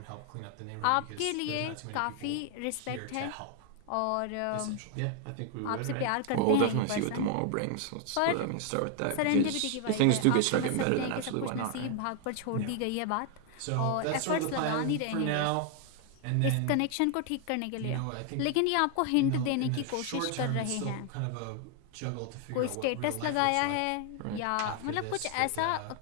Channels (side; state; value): both; different; correlation 0.00